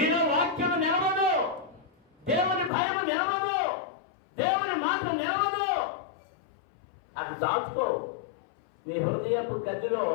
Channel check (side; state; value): right; drops out; at 2.7 s